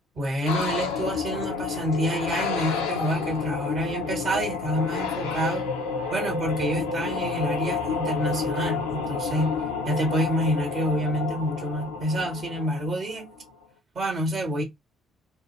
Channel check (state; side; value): normal; both; correlation 0.51